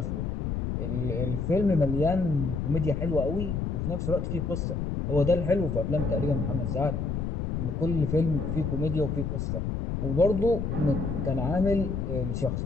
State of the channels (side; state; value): left; noise; rumble, 2 dB below the sound